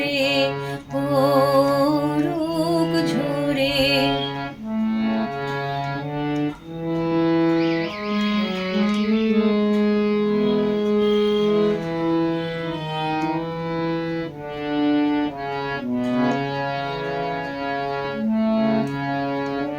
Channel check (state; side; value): identical; both; correlation 1.00